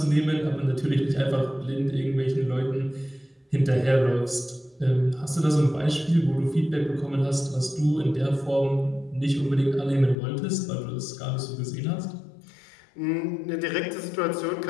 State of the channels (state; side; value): drops out; right; at 10.2 s